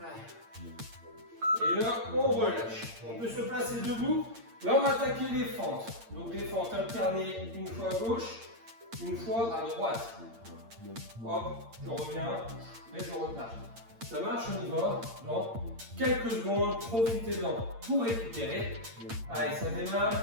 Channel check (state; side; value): late; left; 8.7 ms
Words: Et là on relâche, on peut se placer debout. Là, on va attaquer les fentes. Donc, les fentes alternées, une fois à gauche, une fois à droite. Hop, je reviens et je repars. Ça marche, on y va dans quelques secondes. Profitez-en pour récupérer. Allez, ça démarre.